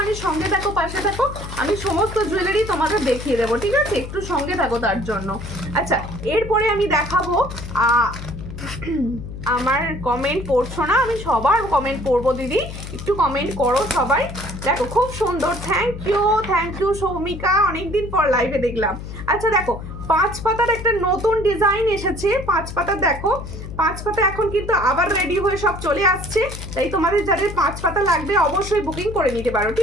সঙ্গে থাকো, পাশে থাকো, আমি সমস্ত জুয়েলারি তোমাদের দেখিয়ে দেবো, ঠিক আছে, একটু সঙ্গে থাকো তার জন্য। আচ্ছা এরপরে আমি দেখাবো আমার কমেন্ট পড়ছো না, আমি সবার কমেন্ট পড়বো দিদি, একটু কমেন্ট করো সবাই। দেখো খুব সুন্দর, থ্যাংক ইউ সৌমিকা, অনেকদিন পর লাইভে দেখলাম। আচ্ছা দেখো 5 পাতার একটা নতুন ডিজাইন এসেছে, 5 পাতা দেখো, 5 পাতা এখন কিন্তু আবার রেডি হয়ে সব চলে আসছে, তাই তোমাদের যাদের 5 পাতা লাগবে অবশ্যই বুকিং করে নিতে পারো,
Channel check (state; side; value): noise; left; hum, 10 dB below the sound